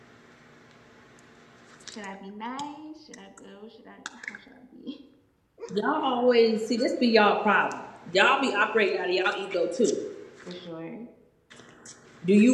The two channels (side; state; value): both; identical; correlation 1.00